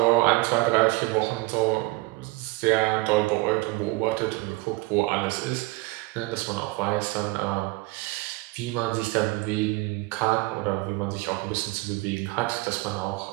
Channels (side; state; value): left; quieter; 21.7 dB